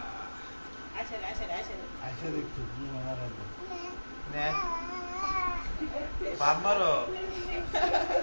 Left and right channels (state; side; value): inverted; both; correlation -1.00